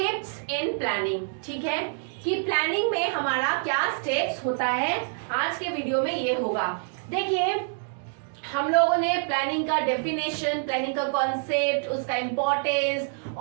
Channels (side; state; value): left; silent; digital silence